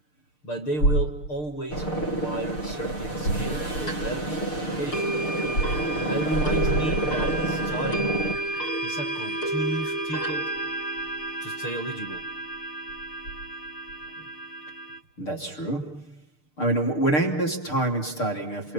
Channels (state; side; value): late; right; 6.7 ms